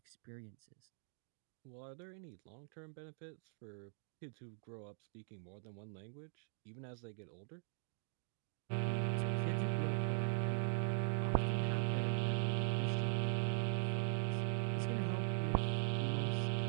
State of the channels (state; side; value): silent; left; digital silence